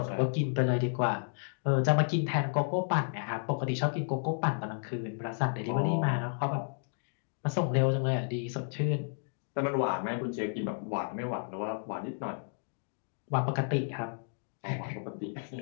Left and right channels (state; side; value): silent; right; digital silence